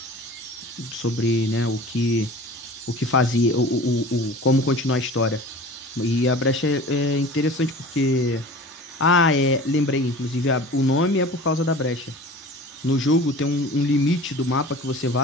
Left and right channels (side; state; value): both; normal; correlation 0.40